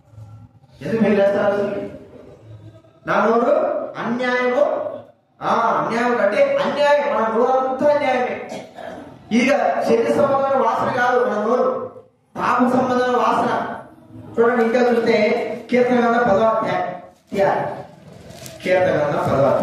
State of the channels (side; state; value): both; identical; correlation 1.00